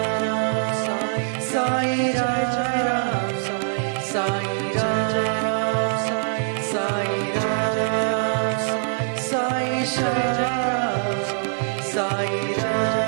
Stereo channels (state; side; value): silent; left; digital silence